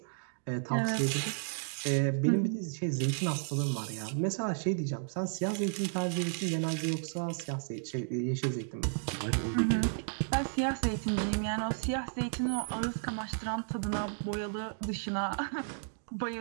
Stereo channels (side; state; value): left; silent; digital silence